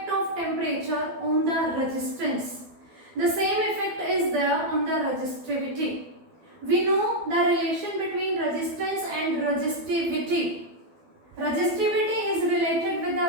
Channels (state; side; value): late; left; 12 ms